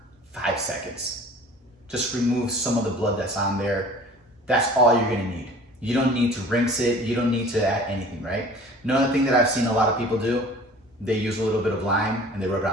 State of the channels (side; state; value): both; normal; correlation 0.46